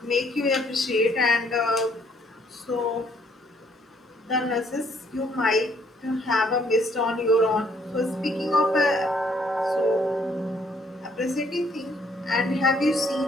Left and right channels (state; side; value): normal; both; correlation 0.66